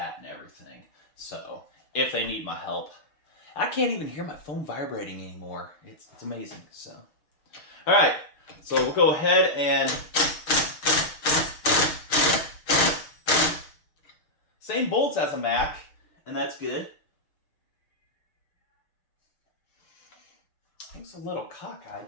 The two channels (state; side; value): late; right; 6.5 ms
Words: and everything. So, if they need my help. I can't even hear my phone vibrating anymore. It's amazing. So, all right. So we'll go ahead and same bolts as a Mac, and that's good. It's a little